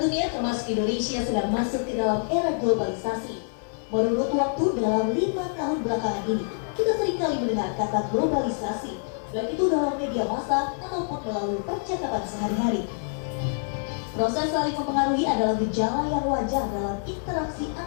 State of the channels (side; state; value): right; silent; 61 dB below the other